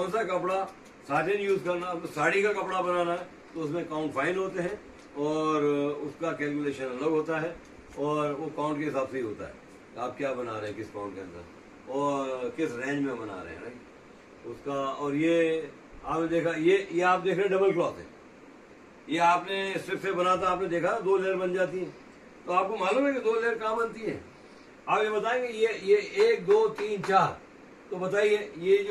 सा कपड़ा साटिन यूज करना, तो साड़ी का कपड़ा बनाना है तो उसमें काउंट फाइन होते हैं, और उसका कैलकुलेशन अलग होता है, और वो काउंट के हिसाब से ही होता है आप क्या बना रहे हैं, किस काउंट के अंदर और किस रेंज में बना रहे हैं, राइट उसका। और ये आपने देखा, ये आप देख रहे हैं डबल क्लॉथ है, ये आपने स्ट्रिप से बना था, आपने देखा 2 लेयर बन जाती है। तो आपको मालूम है कि 2 लेयर कहाँ बनती है, आप ये बताएंगे ये 1 2 3 4, तो बताइए ये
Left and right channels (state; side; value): identical; both; correlation 1.00